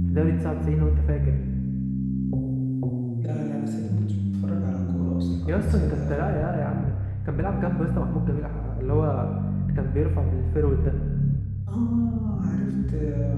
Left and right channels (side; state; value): both; identical; correlation 1.00